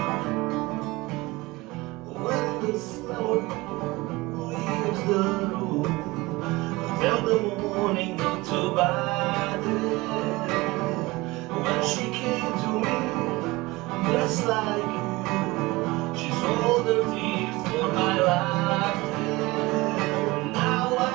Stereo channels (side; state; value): left; quieter; 21.6 dB